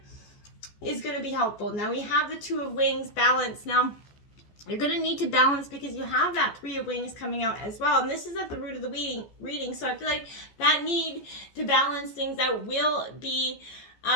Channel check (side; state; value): right; late; 14 ms